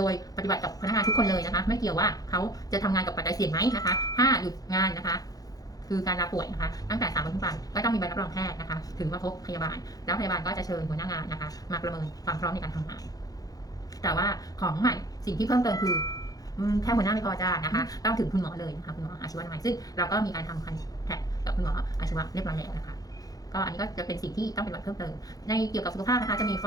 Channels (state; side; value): late; right; 0.18 ms